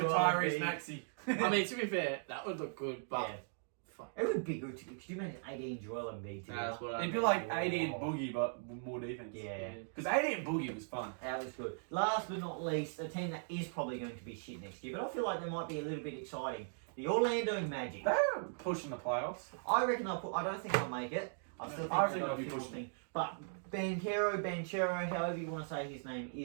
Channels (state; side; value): silent; left; digital silence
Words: could Tyrese be- Maxey. I mean, to be fair, that would look good, but Yeah. fuck. It would be good. Could you imagine AD and Joel Embiid together? That's what I It'd be mean. like AD and Boogie, but with more defense. Yeah. Because AD and Boogie was fun. That was good. Last but not least, a team that is probably going to be shit next year, but I feel like they might be a little bit exciting. The Orlando Magic. They're pushing the playoffs. I reckon I don't think I'll make it. I still think I they've think got they'll a be few more pushing. things. But Banchero, however you want to say his name,